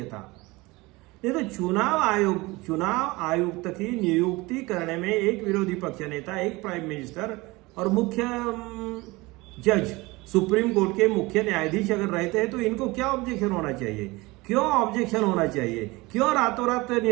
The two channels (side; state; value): left; quieter; 22.5 dB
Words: था। नहीं तो चुनाव आयुक्त की नियुक्ति करने में एक विरोधी पक्ष नेता, एक प्राइम मिनिस्टर और मुख्य जज, सुप्रीम कोर्ट के मुख्य न्यायाधीश अगर रहते हैं तो इनको क्या ऑब्जेक्शन होना चाहिए? क्यों ऑब्जेक्शन होना चाहिए? क्यों रातों रात